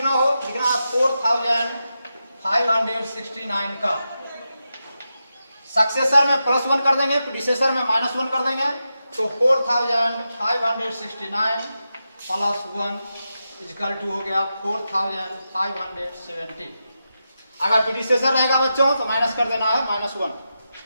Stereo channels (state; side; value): inverted; both; correlation -0.89